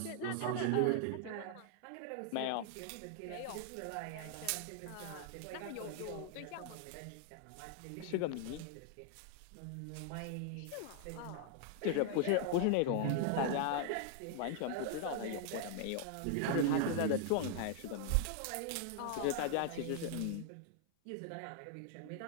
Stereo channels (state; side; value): different; both; correlation 0.00